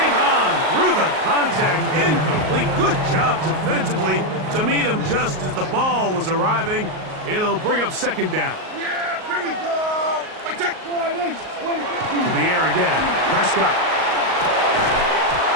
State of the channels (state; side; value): late; left; 38 ms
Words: on through the contact. Incomplete. Good job defensively to meet him just as the ball was arriving. It'll bring up 2nd down. Yeah, here we go. To the air again. Prescott.